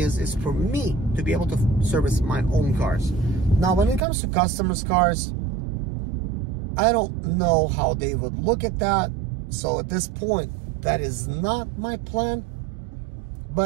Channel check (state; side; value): drops out; left; at 4.0 s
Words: for me to be able to service my own cars. Now, when it comes to customers' cars, I don't know how they would look at that. So at this point, that is not my plan.